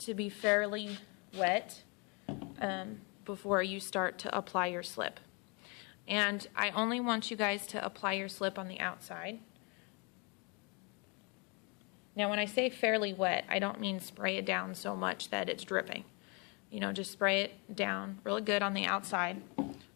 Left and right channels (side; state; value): right; quieter; 32.6 dB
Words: be fairly wet before you start to apply your slip. And I only want you guys to apply your slip on the outside. Now when I say fairly wet, I don't mean spray it down so much that it's dripping. You know, just spray it down really good on the outside